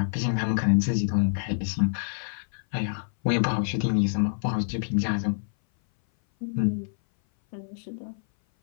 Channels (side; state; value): right; silent; 58 dB below the other